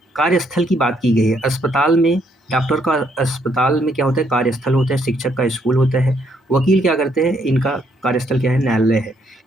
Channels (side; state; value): both; normal; correlation 0.71